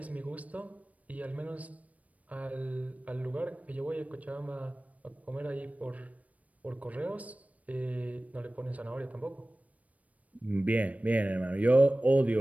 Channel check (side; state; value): left; late; 0.069 ms